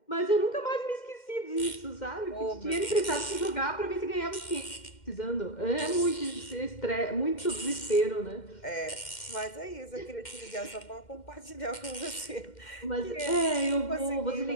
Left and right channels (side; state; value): right; late; 2.1 ms